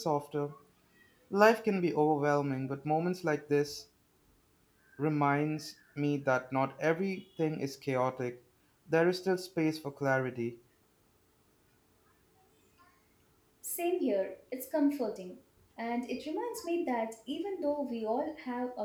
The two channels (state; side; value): identical; both; correlation 1.00